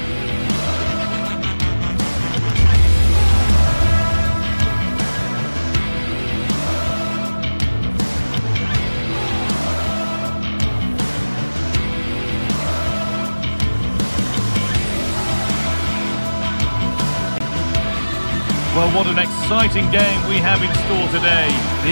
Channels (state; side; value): inverted; both; correlation -1.00